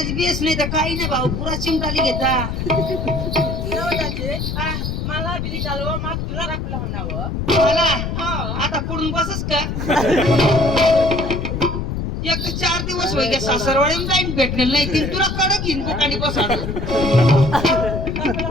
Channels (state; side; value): noise; left; rumble, 3 dB below the sound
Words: बेस नाही तर काही नाही भाऊ पुरा चिमटाली घेता हा, मला बिली चालवा मग तुला राखला म्हणावं मला हो. आता पुढून बसच का एक 4 दिवस होईल का सासरवाडी जाईन भेटलेलं नाही ती तुला कडक घेईन बुकानी बसाड